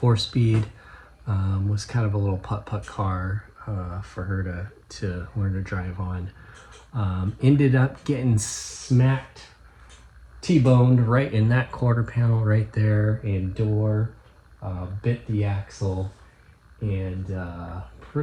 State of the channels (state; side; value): identical; both; correlation 1.00